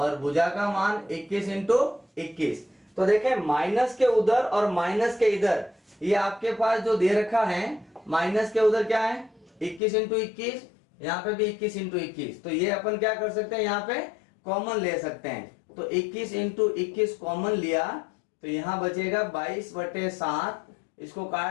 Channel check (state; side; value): drops out; right; at 9.8 s